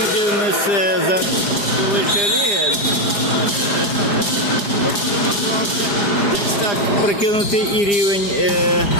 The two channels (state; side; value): late; right; 4.9 ms